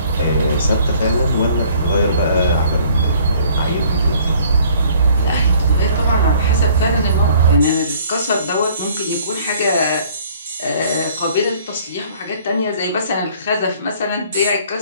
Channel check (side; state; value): both; inverted; correlation -0.56